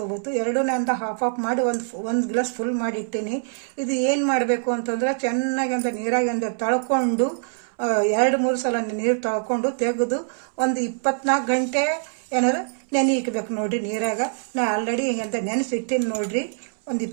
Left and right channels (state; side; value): silent; left; 63 dB below the other